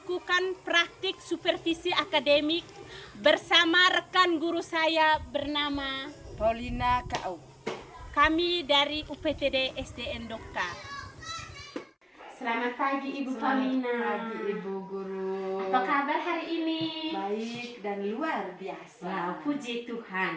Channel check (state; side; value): identical; both; correlation 1.00